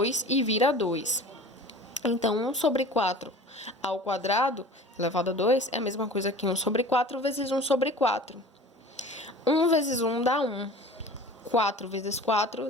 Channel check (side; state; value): both; normal; correlation 0.41